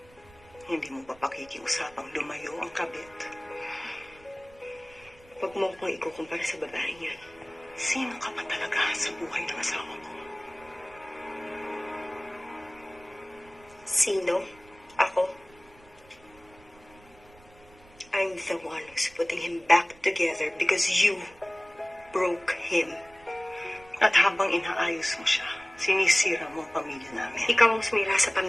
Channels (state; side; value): noise; right; rumble, 26 dB below the sound